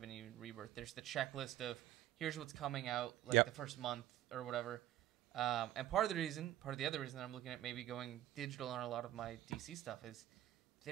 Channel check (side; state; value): left; quieter; 13.6 dB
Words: been even Rebirth. There's the checklist of here's what's coming out the first month or whatever. And part of the other reason that I'm looking at maybe going digital on a lot of my DC stuff is